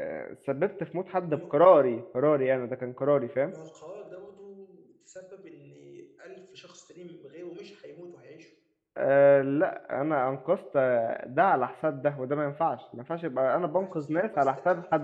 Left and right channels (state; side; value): identical; both; correlation 1.00